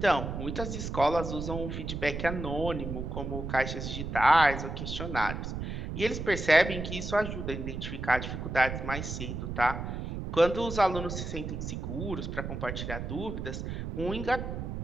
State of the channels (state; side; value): noise; right; rumble, 5 dB below the sound